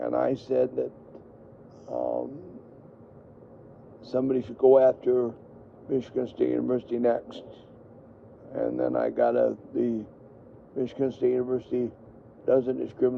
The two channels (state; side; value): identical; both; correlation 1.00